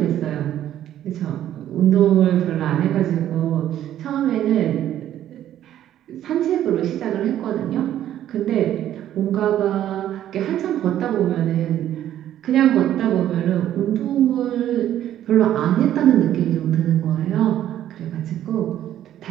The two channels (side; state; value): left; quieter; 11.8 dB